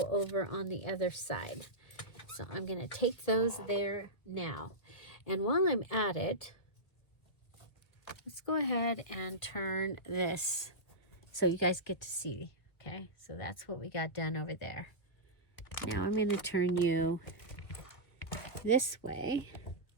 over on the other side. So I'm going to take those there now. And while I'm at it, let's go ahead and turn this so you guys get to see, okay? So that's what we got done over there. Now I'm going to turn you this way,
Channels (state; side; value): late; right; 1.7 ms